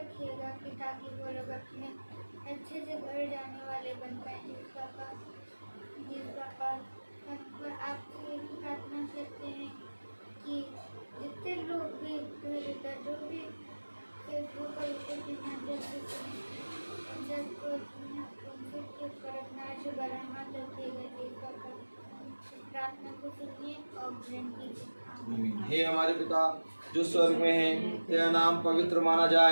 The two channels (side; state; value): both; inverted; correlation -1.00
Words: कि ताकि वो लोग अपने अच्छे से घर जाने वाले बन पाए। जिस पापा हम आपसे ये प्रार्थना करते हैं कि जितने लोग भी इधर उधर जो भी फेसबुक और यूट्यूब के माध्यम से सबको उनके करना जो बढ़ाना रखिएगा। जिस पापा प्रार्थना को सुनिए और ग्रहण कीजिए। हे हमारे पिता जो स्वर्ग में है, तेरा नाम पवित्र माना